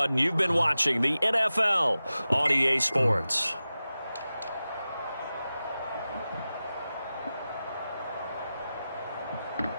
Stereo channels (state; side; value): inverted; both; correlation -0.94